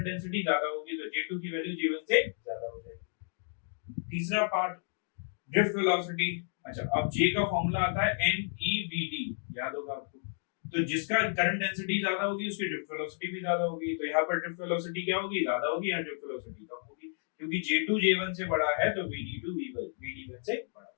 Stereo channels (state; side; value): silent; right; digital silence